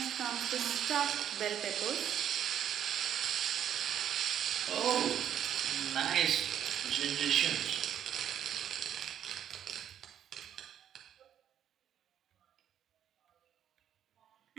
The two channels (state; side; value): quieter; left; 9.8 dB